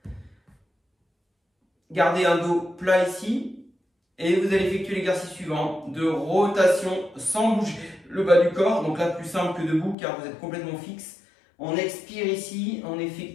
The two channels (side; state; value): right; drops out; at 10.0 s